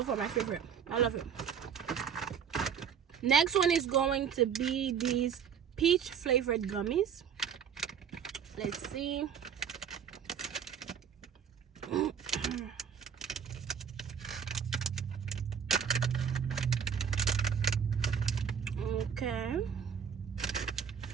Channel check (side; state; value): left; quieter; 7.6 dB